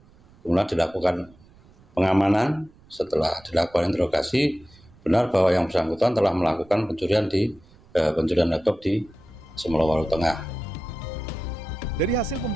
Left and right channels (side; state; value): right; noise; rumble, 27 dB below the sound